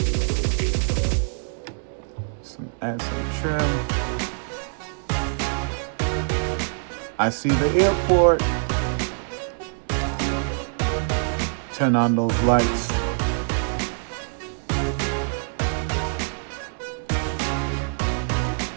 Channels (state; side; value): silent; left; 62 dB below the other